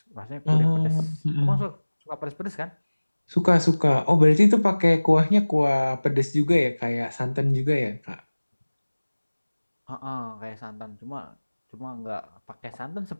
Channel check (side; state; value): both; inverted; correlation -1.00